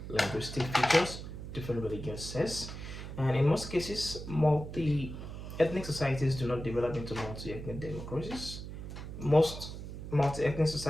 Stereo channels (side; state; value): right; noise; hum, 9 dB below the sound